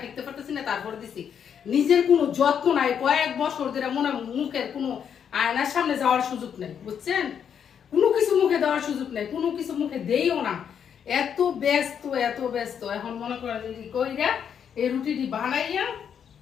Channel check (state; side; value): quieter; right; 8.0 dB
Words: টিকতে পারতেছি না, তারপরে দিছি। নিজের কোনো যত্ন নাই, কয়েক বছর ধরে মনে মুখের কোনো আয়নার সামনে যাওয়ার সুযোগ নেই, বুঝছেন, কোনো কিছু মুখে দেওয়ার সুযোগ নেই, কোনো কিছু মুখে দেইও না, এত ব্যস্ত এত ব্যস্ত। এখন মনে করেন কইরা এই রুটিটি বানাইয়া